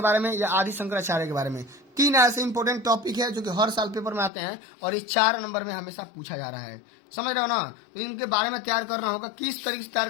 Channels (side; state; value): right; drops out; at 4.3 s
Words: बारे में या आदि शंकराचार्य के बारे में। 3 ऐसे इंपॉर्टेंट टॉपिक है जो कि हर साल पेपर में आते हैं और ये 4 नंबर में हमेशा पूछा जा रहा है, समझ रहे हो ना। तो इनके बारे में तैयार करना होगा। किस तरीके से तैयार